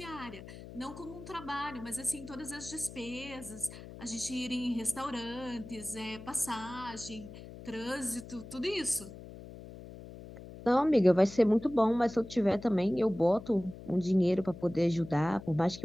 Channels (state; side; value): noise; left; hum, 14 dB below the sound